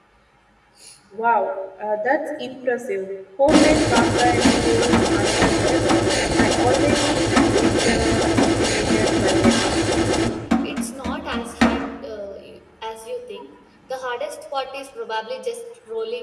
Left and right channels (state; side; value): identical; both; correlation 1.00